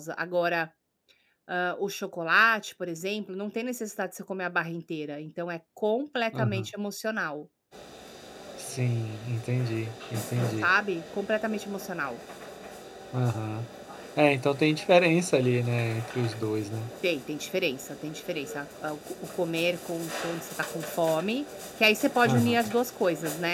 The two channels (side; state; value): both; identical; correlation 1.00